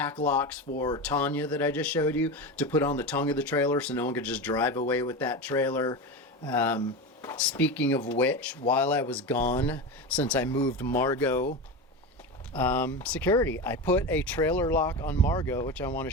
locks for Tanya that I just showed you to put on the tongue of the trailer so no one could just drive away with that trailer. Speaking of which, while I was gone, since I moved Margot, security, I put a trailer lock on Margot, which I want to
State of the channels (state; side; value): normal; both; correlation 0.22